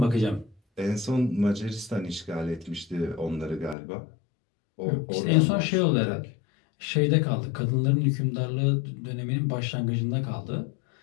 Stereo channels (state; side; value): drops out; right; at 3.8 s